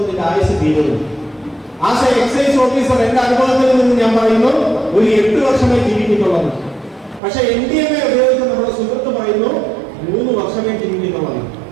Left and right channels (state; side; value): drops out; left; at 7.2 s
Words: ഇതിന്റെ ആയുസ് തീരുന്നു. ആസ് എ എക്സൈസ് ഓഫീസർ എന്റെ അനുഭവത്തിൽ നിന്ന് ഞാൻ പറയുന്നു, ഒരു 8 വർഷമേ ജീവിക്കുന്നുള്ളത്. പക്ഷെ MDMA ഉപയോഗിച്ച് നമ്മുടെ സുഹൃത്ത് പറയുന്നു 3 വർഷമേ ജീവിക്കുന്നുള്ളത്.